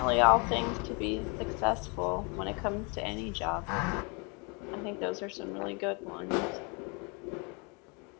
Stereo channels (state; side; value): quieter; right; 32.4 dB